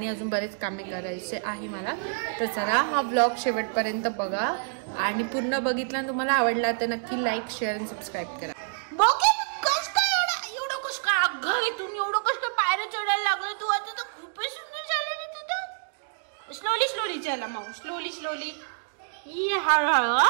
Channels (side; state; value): left; silent; digital silence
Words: अजून बरेच कामे करायचे आहे मला. तर चला हा ब्लॉग शेवटपर्यंत बघा आणि पूर्ण बघितला तुम्हाला आवडला तर नक्की लाईक, शेअर आणि सबस्क्राईब करा. घरीतून एवढं कष्ट पायऱ्या चढायला लागलं तू. आता तर खूपच सुंदर झालं ना तुझं. स्लोली स्लोली चला माऊ, स्लोली स्लोली. हळूहळू.